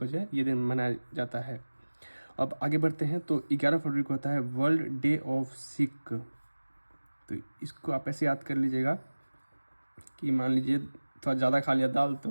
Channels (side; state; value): both; inverted; correlation -1.00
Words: जो है ये दिन मनाया जाता है। अब आगे बढ़ते हैं। तो 11 फरवरी को होता है वर्ल्ड डे ऑफ सिक। तो इसको आप ऐसे याद कर लीजिएगा कि मान लीजिए थोड़ा ज़्यादा खा लिया दाल, तो